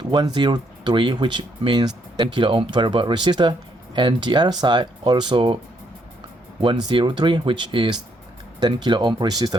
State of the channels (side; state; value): both; normal; correlation 0.73